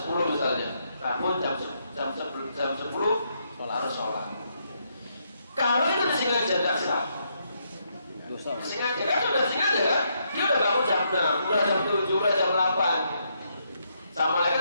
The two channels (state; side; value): inverted; both; correlation -0.77